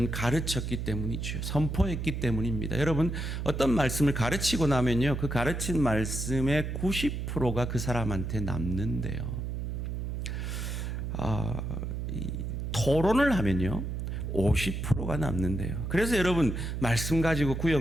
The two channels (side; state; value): right; noise; hum, 4 dB below the sound